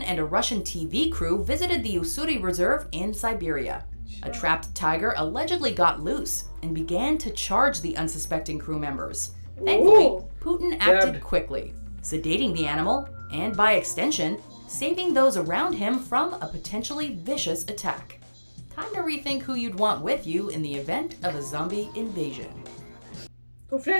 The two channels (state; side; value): inverted; both; correlation -1.00